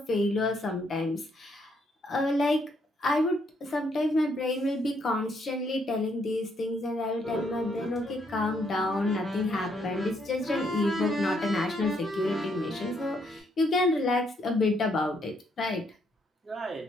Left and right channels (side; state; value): both; normal; correlation 0.72